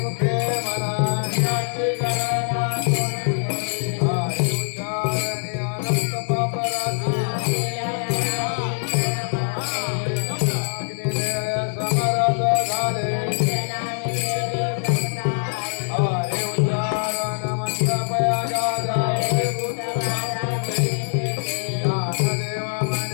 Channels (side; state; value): right; silent; digital silence